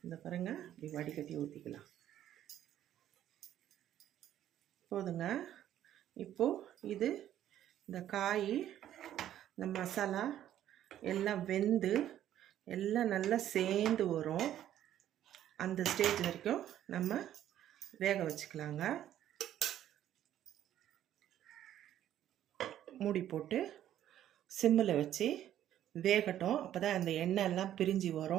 இந்த பாருங்க இப்படி வடிகட்டி ஊற்றிக்கலாம். போதுங்க. இப்போது இது இந்த காய் இந்த மசாலா எல்லாம் வெந்து எல்லாம் நல்லா சேர்ந்து வரும். அந்த ஸ்டேஜ் வரைக்கும் நம்ம வேக வச்சுக்கலாங்க. மூடி போட்டு சிம்மில் வச்சு வேகட்டும். அப்போ தான் அந்த எண்ணெய் எல்லாம் பிரிஞ்சு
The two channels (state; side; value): quieter; left; 11.6 dB